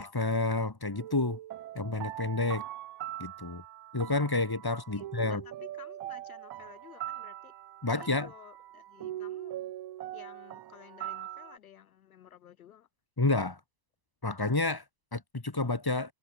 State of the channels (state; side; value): late; right; 1.1 ms